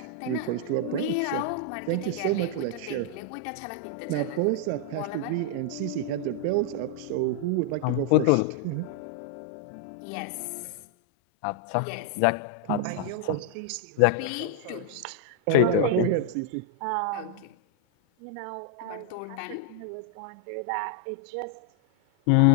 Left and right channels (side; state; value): both; different; correlation 0.00